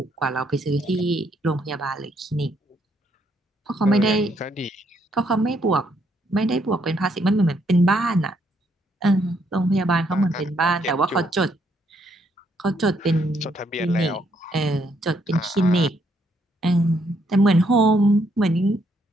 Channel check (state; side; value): normal; both; correlation 0.72